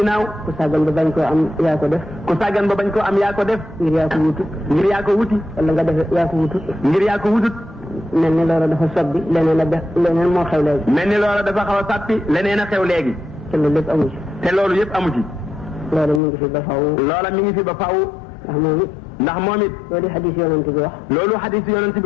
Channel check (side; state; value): right; drops out; at 16.2 s